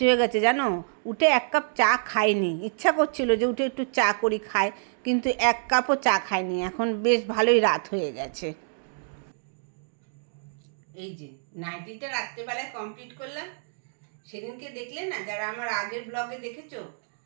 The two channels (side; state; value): left; silent; digital silence